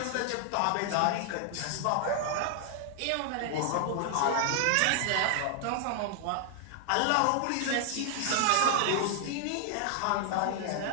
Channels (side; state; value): both; different; correlation 0.00